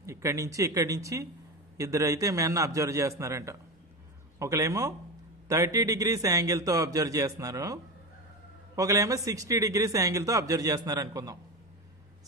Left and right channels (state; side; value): normal; both; correlation 0.22